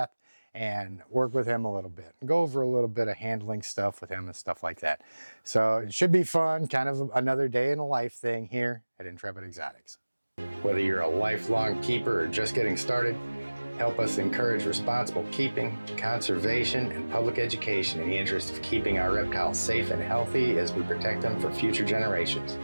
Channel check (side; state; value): both; inverted; correlation -1.00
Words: and work with him a little bit. Go over a little bit of handling stuff with him and stuff like that. So it should be fun, kind of another day in a life thing here at Intrepid Exotics. Whether you're a lifelong keeper or just getting started, help us encourage responsible keeping, conservation, and public education in the interest of keeping our reptiles safe and healthy as we protect them for future generations.